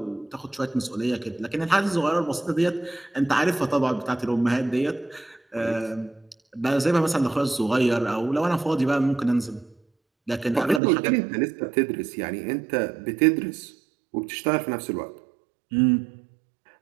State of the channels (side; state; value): left; drops out; at 10.8 s